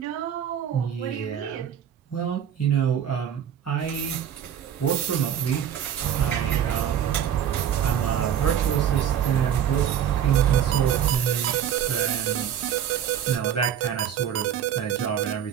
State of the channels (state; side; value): quieter; left; 9.3 dB